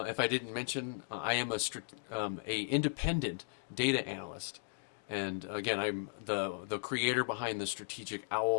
I didn't mention, I am a independent data analyst. And again, I'm the creator behind the Strategic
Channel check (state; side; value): silent; right; digital silence